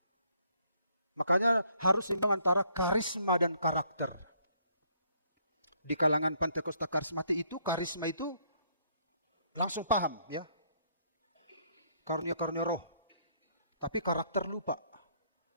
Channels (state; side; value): inverted; both; correlation -0.68